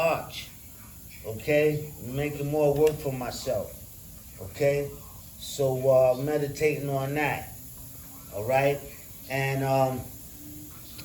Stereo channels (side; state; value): both; identical; correlation 1.00